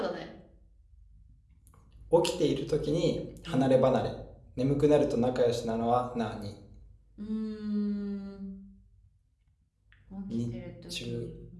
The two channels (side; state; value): both; identical; correlation 1.00